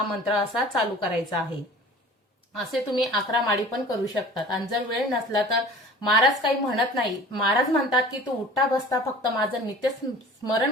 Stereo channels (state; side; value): normal; both; correlation 0.43